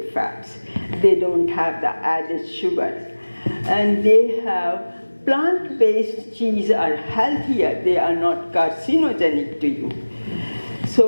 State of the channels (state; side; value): inverted; both; correlation -1.00